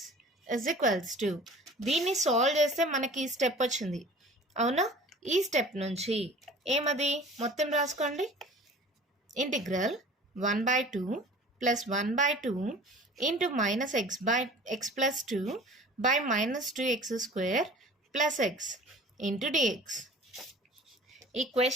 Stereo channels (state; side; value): normal; both; correlation 0.44